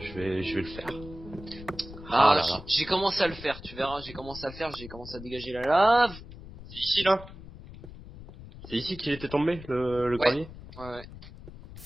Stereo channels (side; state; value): left; noise; rumble, 15 dB below the sound